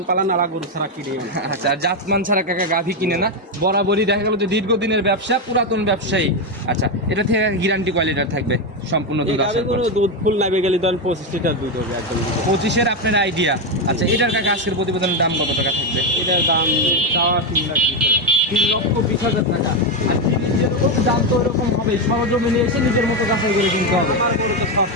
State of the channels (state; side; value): normal; both; correlation 0.08